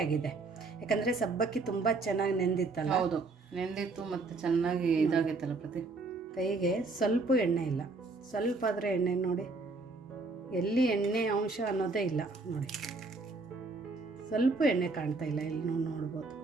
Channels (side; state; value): left; quieter; 3.7 dB